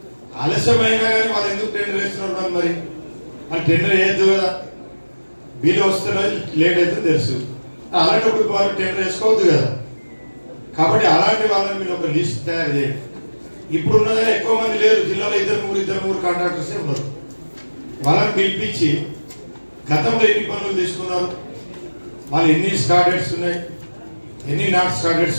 ఆలస్యమైనా కానీ వాళ్ళు ఎందుకు టెండర్ వేస్తున్నారు, మరి వాళ్ళు టెండర్ వేయద్దు కదా, బిల్ వస్తున్నా లేట్ అవుతుందో తెలుసు. అలాంటప్పుడు వాళ్ళు టెండర్ వేసుకోవద్దు కదా. కాబట్టి అలాంటి వాళ్ళని మీరు ఒక లిస్ట్ తయారు చేయండి. ఇప్పుడు ఉన్నదని ఎక్కువ మంది లేరు జిల్లాలో, 2-3 కాంట్రాక్టర్సే ఉన్నారు. వాళ్ళని పిలిపించి గతంలో ఎన్ని పనులు తీసుకున్నారు, వాళ్ళు ఎన్ని స్టార్టెడ్స్ ఉన్నాయి, ఎన్ని నాట్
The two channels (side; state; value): both; inverted; correlation -1.00